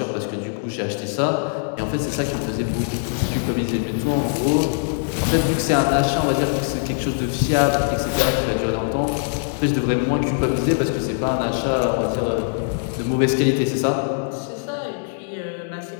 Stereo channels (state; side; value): silent; right; digital silence